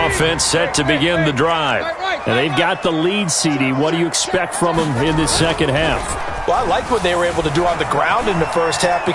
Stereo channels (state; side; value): identical; both; correlation 1.00